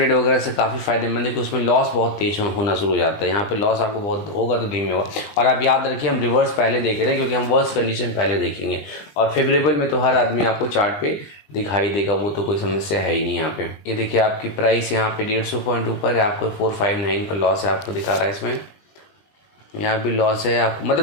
वगैरह से काफ़ी फायदेमंद है कि उसमें लॉस बहुत तेज होना शुरू हो जाता है। यहाँ पे लॉस आपको बहुत होगा तो धीमे होगा। और आप याद रखिए हम रिवर्स पहले देख रहे हैं, क्योंकि हम वर्स्ट कंडीशन पहले देखेंगे और फेवरेबल में तो हर आदमी आपको चार्ट पे दिखाई देगा, वो तो कोई समस्या है ही नहीं। यहाँ पे ये देखिए आपकी प्राइस यहाँ पे 150 पॉइंट ऊपर है, आपको 459 का लॉस है, आपको दिखा रहा है इसमें। यहाँ भी लॉस है आपको,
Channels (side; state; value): right; late; 20 ms